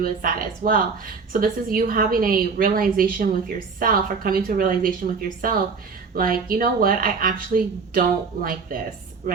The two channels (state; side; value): quieter; left; 5.1 dB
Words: as that as well. So this is you having a realization with yourself, or coming to a realization with yourself, like, you know what, I actually don't like this,